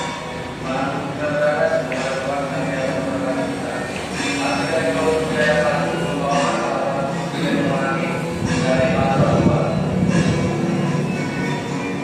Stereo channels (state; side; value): identical; both; correlation 1.00